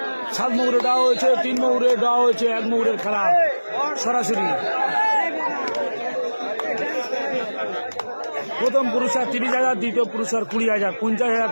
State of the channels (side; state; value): both; inverted; correlation -1.00